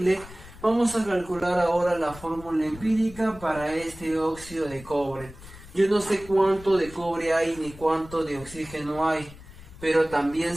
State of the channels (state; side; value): noise; left; rumble, 18 dB below the sound